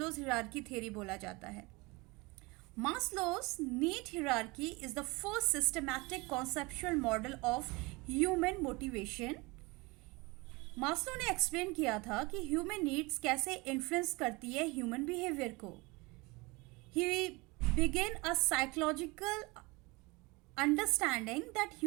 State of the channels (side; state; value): left; quieter; 25.0 dB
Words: हायरार्की थ्योरी बोला जाता है. Maslow's need hierarchy is the first systematic conceptual model of human motivation. Maslow ने एक्सप्लेन किया था कि ह्यूमन नीड्स कैसे इन्फ्लुएंस करती है ह्यूमन बिहेवियर को. He begin a psychological understanding that